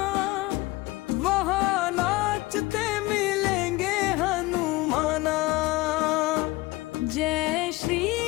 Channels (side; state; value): right; quieter; 20.7 dB